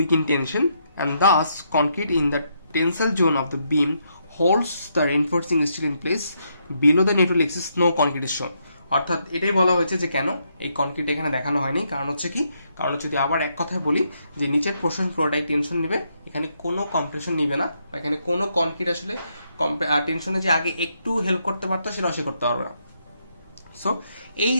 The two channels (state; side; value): inverted; both; correlation -0.77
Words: in tension and thus concrete in the tensile zone of the beam holds the reinforcing steel in place below the neutral axis no concrete is shown. অর্থাৎ এটাই বলা হয়েছে যে কেন এই কনক্রিট এখানে দেখানো হয়নি, কারণ হচ্ছে কি, কারণ যদি আবার এক কথায় বলি যে নিচের পোর্শন পুরোটাই টেনশন নিবে, এখানে কোনো কম্প্রেশন নিবে না, বা এখানে কোনো কনক্রিট আসলে টেনশনে যে আগে একটু হেল্প করতে পারতো সেটা সে করতে পারবে না। সো এই